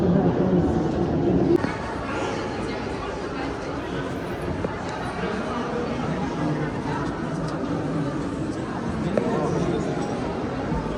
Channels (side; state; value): both; identical; correlation 1.00